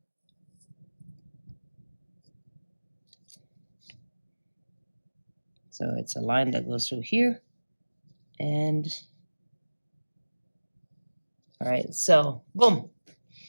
So it's a line that goes through here. And all right, so boom. All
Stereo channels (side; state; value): both; inverted; correlation -1.00